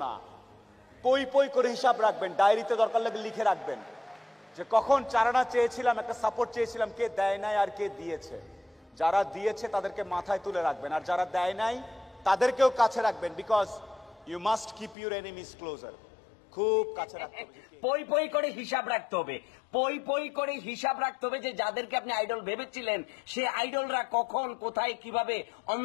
না। পই পই করে হিসাব রাখবেন, ডায়েরিতে দরকার লাগলে লিখে রাখবেন যে কখন চারানা চেয়েছিলাম, একটা সাপোর্ট চেয়েছিলাম, কে দেয় নাই আর কে দিয়েছে। যারা দিয়েছে তাদেরকে মাথায় তুলে রাখবেন, আর যারা দেয় নাই তাদেরকেও কাছে রাখবেন, because you must keep your enemies closer. খুব কাছে রাখতে হবে, পই পই করে হিসাব রাখতে হবে, পই পই করে হিসাব রাখতে হবে যে যাদেরকে আপনি আইডল ভেবেছিলেন সে আইডলরা কখন কোথায় কিভাবে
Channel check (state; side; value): drops out; right; at 15.0 s